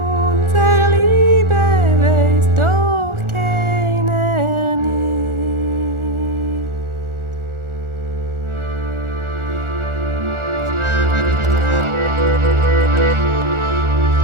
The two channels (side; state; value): left; late; 1.4 ms